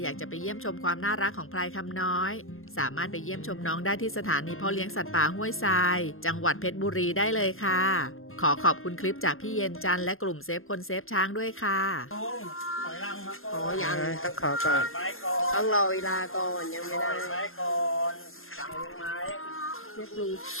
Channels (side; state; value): right; late; 0.61 ms